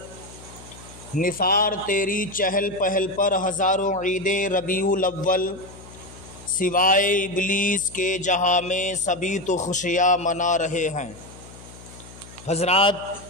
نثار تیری چہل پہل پر ہزاروں عید ربیع الاول، سوائے ابلیس کے جہاں میں سبھی تو خوشیاں منا رہے ہیں۔ حضرات،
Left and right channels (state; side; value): noise; left; hum, 19 dB below the sound